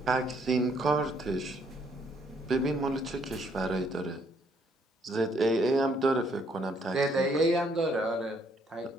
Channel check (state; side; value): normal; both; correlation 0.68